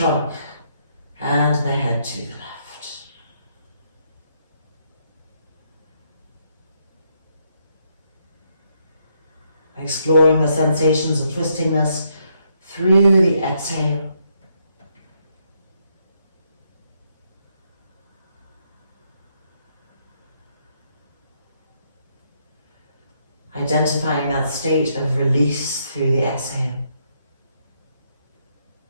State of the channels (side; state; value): both; inverted; correlation -0.75